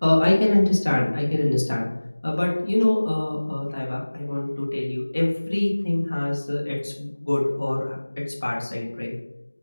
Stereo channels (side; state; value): both; inverted; correlation -1.00